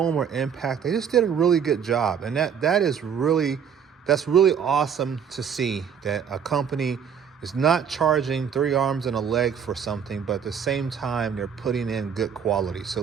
or impact. They just did a really good job. And that's really awesome to see that a company is not charging 3 arms and a leg for something, but at the same time, they're putting in good quality. So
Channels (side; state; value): left; quieter; 7.5 dB